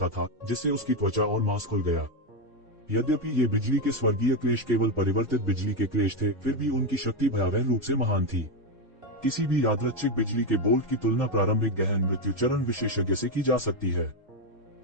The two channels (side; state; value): both; normal; correlation 0.07